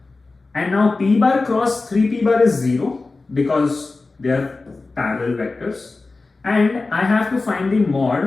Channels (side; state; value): right; quieter; 3.6 dB